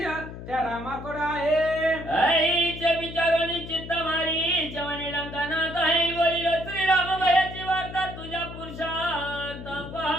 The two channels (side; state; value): left; noise; hum, 11 dB below the sound